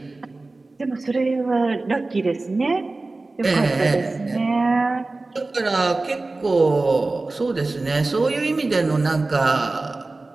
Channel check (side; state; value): left; quieter; 3.3 dB